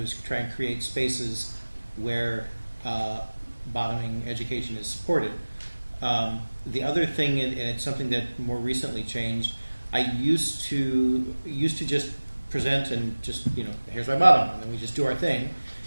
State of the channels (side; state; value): both; inverted; correlation -1.00